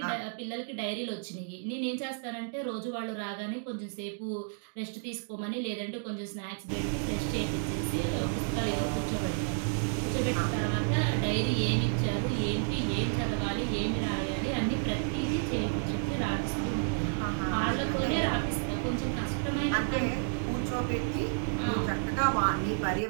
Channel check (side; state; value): left; silent; digital silence